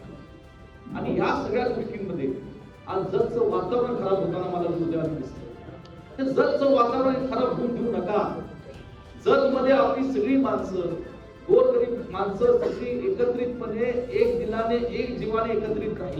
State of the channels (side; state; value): both; identical; correlation 1.00